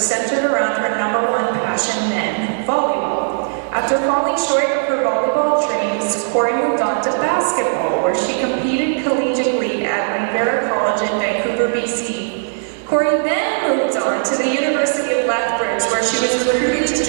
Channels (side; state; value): left; silent; digital silence